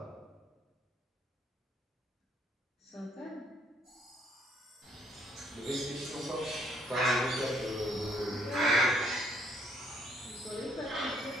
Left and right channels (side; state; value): both; normal; correlation 0.67